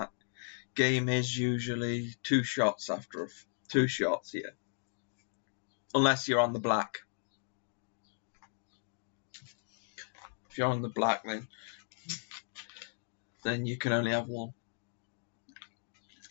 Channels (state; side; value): silent; right; digital silence